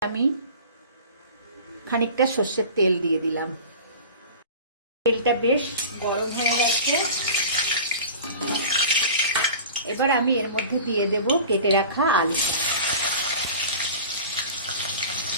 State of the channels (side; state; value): both; inverted; correlation -0.38